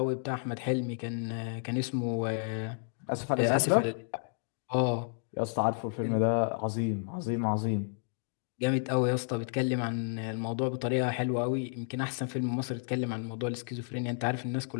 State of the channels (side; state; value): right; silent; digital silence